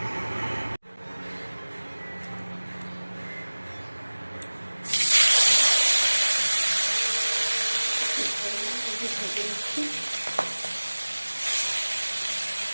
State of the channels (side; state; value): both; inverted; correlation -1.00